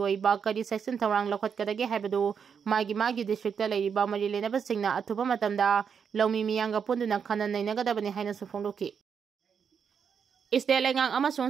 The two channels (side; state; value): left; quieter; 6.9 dB